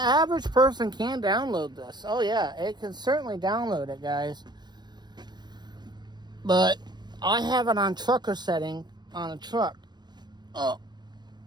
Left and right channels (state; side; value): late; left; 0.21 ms